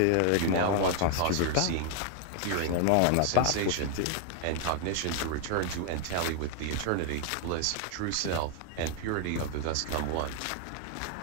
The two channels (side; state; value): both; different; correlation 0.00